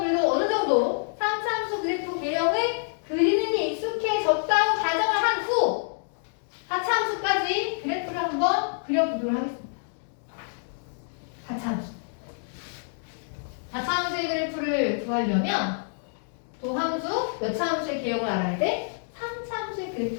어느 정도 3차 함수 그래프 개형을 그리는 게 익숙해졌다고 가정을 한 후 4차 함수까지 그래프를 한번 그려보도록 하겠습니다. 4차 함수. 4차 함수의 그래프를 구하려면 도함수 몇 차 함수의 개형을 알아야 돼? 3차 함수의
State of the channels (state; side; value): silent; right; digital silence